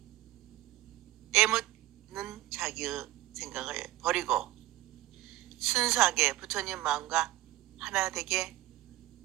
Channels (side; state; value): left; quieter; 15.9 dB